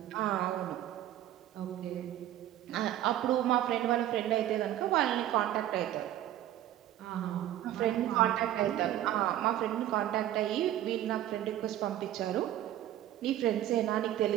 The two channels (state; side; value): quieter; left; 12.7 dB